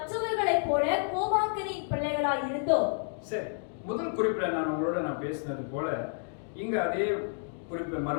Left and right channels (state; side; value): silent; right; digital silence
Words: போல கோபாக்கனின் பிள்ளைகளாய் இருந்தோம். சரி, முதல் குறிப்பில் நான் பேசினது போல இங்க அதே குறிப்பு